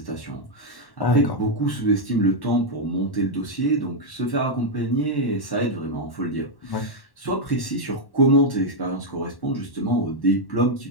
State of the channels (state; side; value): late; right; 1.1 ms